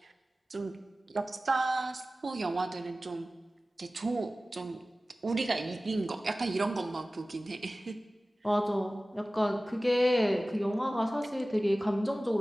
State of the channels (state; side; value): normal; both; correlation 0.97